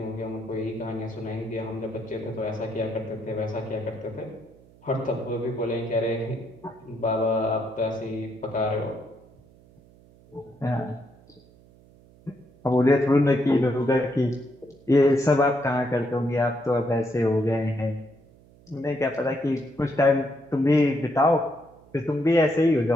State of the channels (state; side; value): noise; right; hum, 26 dB below the sound